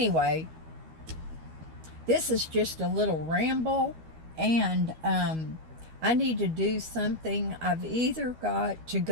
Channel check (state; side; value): late; left; 12 ms